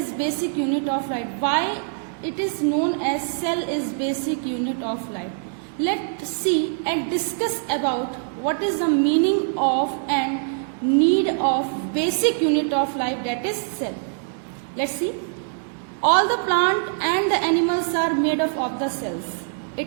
basic unit of life. Why it is known as cell is basic unit of life? Let's see and discuss about what is the meaning of and need of basic unit of life, that is cell. Let's see. All the plant and the animals are made up of the cells.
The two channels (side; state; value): left; silent; digital silence